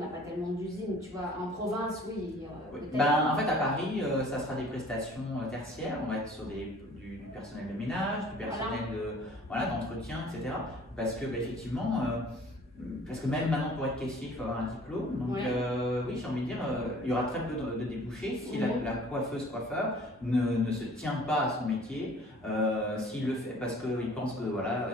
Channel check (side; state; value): both; normal; correlation 0.51